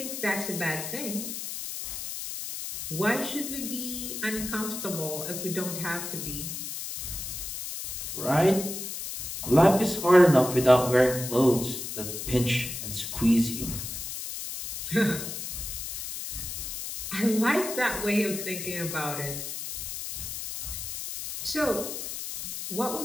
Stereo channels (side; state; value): left; noise; hiss, 6 dB below the sound